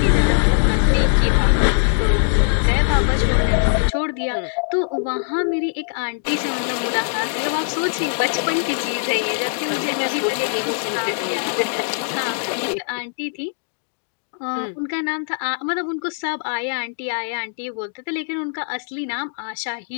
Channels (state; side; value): silent; right; digital silence